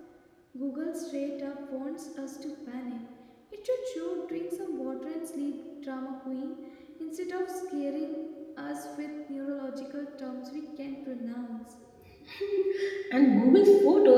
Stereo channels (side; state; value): both; identical; correlation 1.00